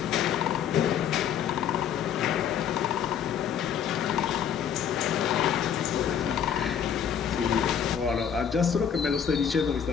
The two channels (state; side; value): quieter; right; 8.3 dB